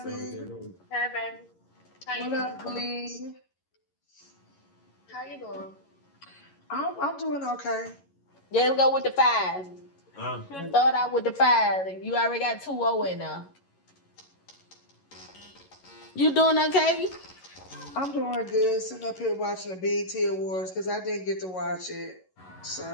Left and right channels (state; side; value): late; right; 11 ms